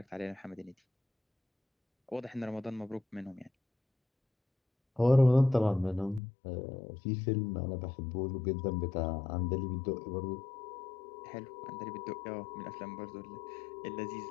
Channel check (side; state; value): right; drops out; at 6.2 s